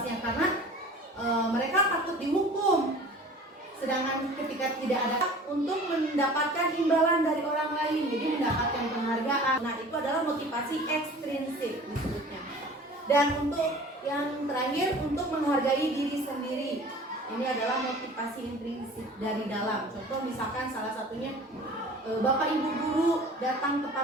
karena mereka takut dihukum, sedangkan ketika tidak ada untuk mendapatkan imbalan dari orang lain, jadi mendapatkan penghargaan. Nah, itu adalah motivasi ekstrinsik disebutnya. Dan untuk yang terakhir, untuk menghargai diri sendiri, ini adalah motivasi intrinsik dari dalam. Contoh misalkan salah satunya Bapak Ibu guru datang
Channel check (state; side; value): normal; both; correlation 0.44